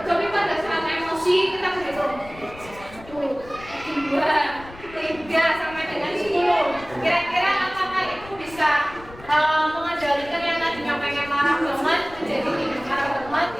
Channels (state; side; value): noise; left; rumble, 19 dB below the sound